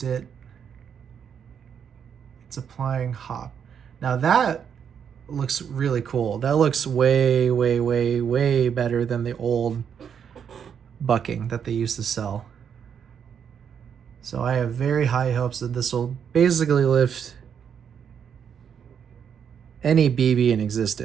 it, it's applying hop. Now that looks really cool. That looks way, way, way, way better than the old bucking that they used to sell. So I have very high hopes that this will basically lift any BB in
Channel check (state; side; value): quieter; left; 7.8 dB